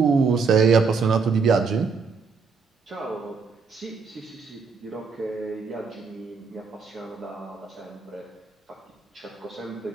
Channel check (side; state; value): left; quieter; 5.0 dB